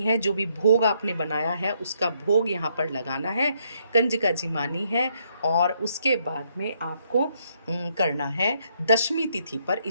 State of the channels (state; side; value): inverted; both; correlation -0.73